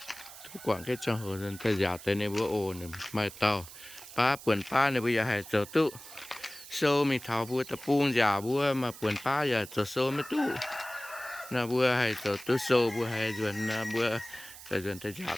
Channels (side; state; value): right; noise; hiss, 16 dB below the sound